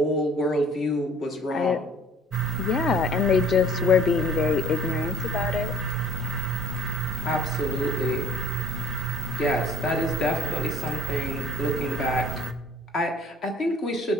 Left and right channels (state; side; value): normal; both; correlation 0.52